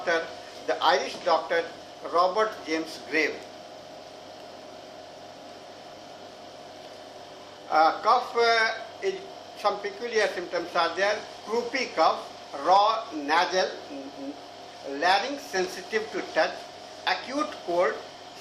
the Irish doctor Robert James Graves. Cough is some peculiar symptoms are there. Croupy cough, raw nasal, larynx sensitive to touch, acute cold,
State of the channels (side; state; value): both; identical; correlation 1.00